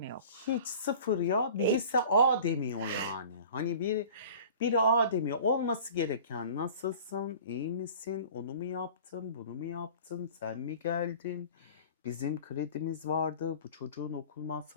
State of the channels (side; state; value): both; inverted; correlation -0.43